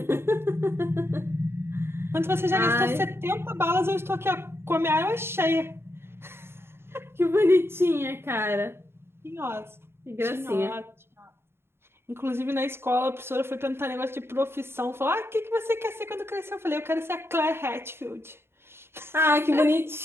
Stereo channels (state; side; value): late; left; 0.12 ms